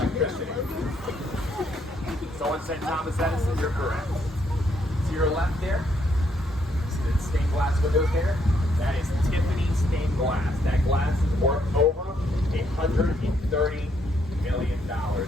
Someone said Thomas Edison, you're correct. To your left there, see the stained glass windows there? That is Tiffany stained glass. That glass is worth over $130 million.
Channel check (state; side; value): normal; both; correlation 0.73